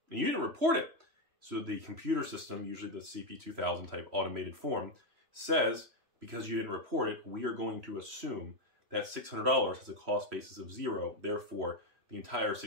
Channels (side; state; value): left; late; 3.0 ms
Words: and you didn't report it. So the computer system, usually the CP2000 type automated form, says, because you didn't report it, we are going to assume that $600 has a cost basis of 0. Therefore, the entire